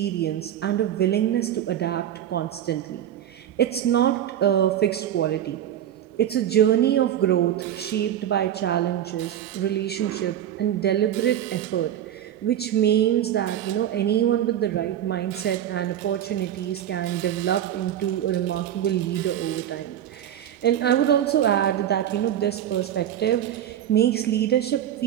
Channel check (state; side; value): quieter; left; 10.8 dB